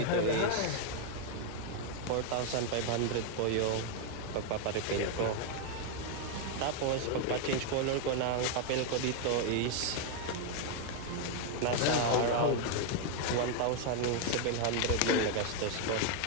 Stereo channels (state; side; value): different; both; correlation 0.01